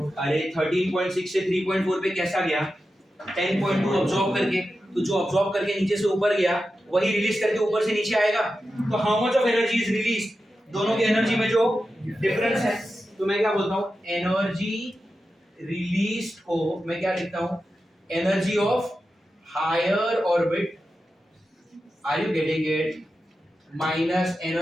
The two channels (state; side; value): normal; both; correlation 0.91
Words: अरे 13.6 से 3.4 पे कैसा गया? 10.2 अब्सॉर्ब करके, तो जो अब्सॉर्ब करके नीचे से ऊपर गया वही रिलीज करके ऊपर से नीचे आएगा। तो how much of energy is release, दोनों की एनर्जी में जो डिफरेंस है, तो मैं क्या बोलता हूँ, एनर्जी रिलीज को मैं क्या लिखता हूँ, energy of higher orbit, are you getting it, minus